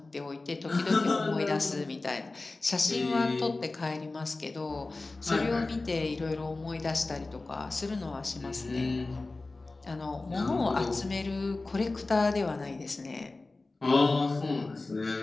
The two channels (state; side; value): quieter; right; 3.3 dB